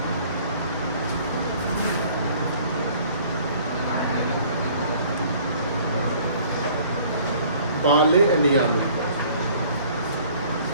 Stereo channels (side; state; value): both; inverted; correlation -0.54